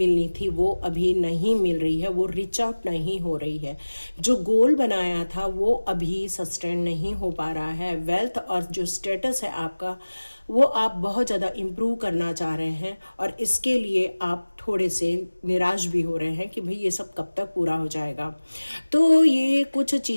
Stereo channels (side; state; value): both; inverted; correlation -1.00